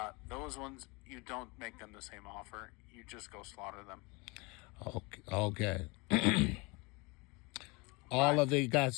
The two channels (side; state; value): right; quieter; 27.3 dB